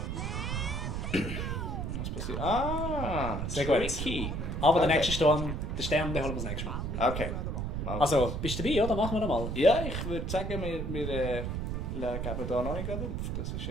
Was passiert? Ah, Sehr gut. tricky. Aber der Okay. nächste Sturm, den Stern, den holen wir das nächste Mal. Okay. Mal. Also, bist du dabei, oder? Machen wir noch mal. Ja, ich würde sagen, wir geben da noch nicht gerade auf. Das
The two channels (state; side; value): noise; right; rumble, 3 dB below the sound